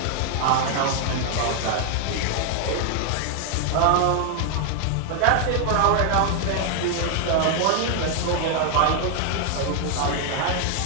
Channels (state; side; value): different; both; correlation 0.00